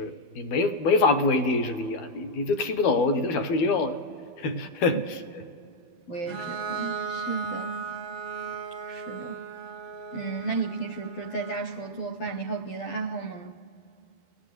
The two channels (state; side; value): late; right; 12 ms